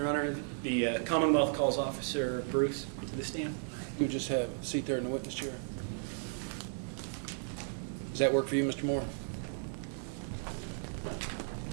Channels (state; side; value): silent; left; digital silence